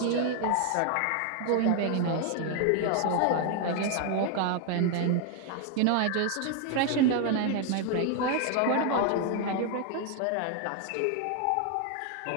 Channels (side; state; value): both; different; correlation 0.00